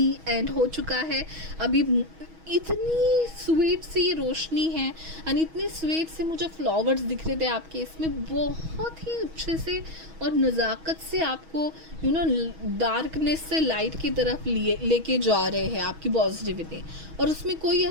एंड हो चुका है। अभी इतनी स्वीट सी रोशनी है, एंड इतने स्वीट से मुझे फ्लावर्स दिख रहे थे आपके इसमें, बहुत ही अच्छे से और नज़ाकत से आपको डार्कनेस से लाइट की तरफ लेके जा रहे हैं आपकी पॉजिटिविटी। और उसमें कोई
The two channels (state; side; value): late; left; 6.2 ms